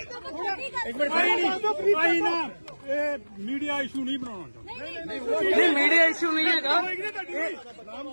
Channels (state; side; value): inverted; both; correlation -1.00